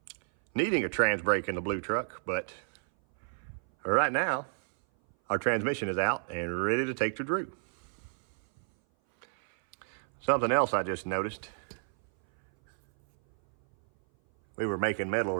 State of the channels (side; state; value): left; silent; 57 dB below the other